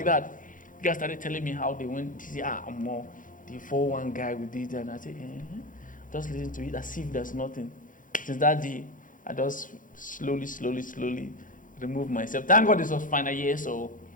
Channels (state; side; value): late; right; 0.39 ms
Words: that. You guys started telling me how they went to see, I'm more the 4-1 guy with it. And I said, just listen to it as if there's nothing. Since that day, I just slowly removed myself. Thank God this was final year, so